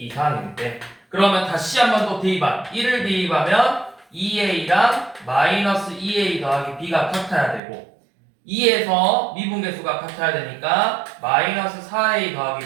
이상일 때. 그러면 다시 한번 또 대입한 1을 대입하면 2a랑 마이너스 2a 더하기 b가 같아야 되고 2에서 미분계수가 같아야 되니까 마이너스 4a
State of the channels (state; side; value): drops out; left; at 7.6 s